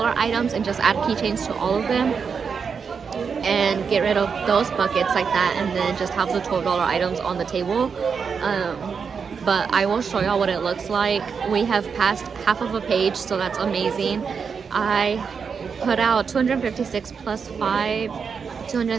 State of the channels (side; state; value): left; quieter; 6.0 dB